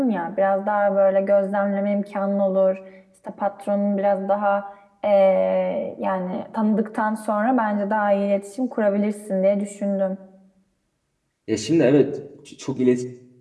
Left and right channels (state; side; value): identical; both; correlation 1.00